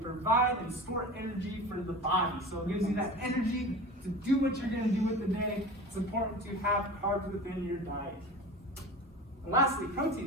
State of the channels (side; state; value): both; normal; correlation 0.34